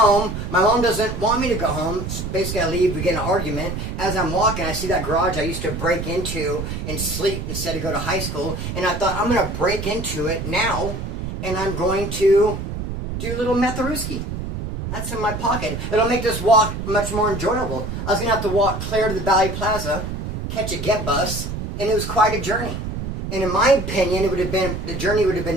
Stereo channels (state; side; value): noise; right; rumble, 5 dB below the sound